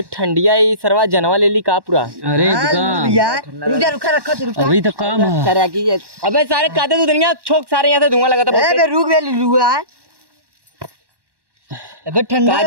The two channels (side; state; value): left; late; 1.1 ms